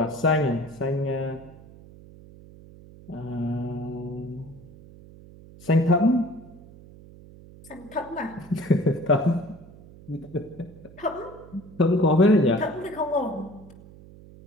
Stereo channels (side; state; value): right; noise; hum, 20 dB below the sound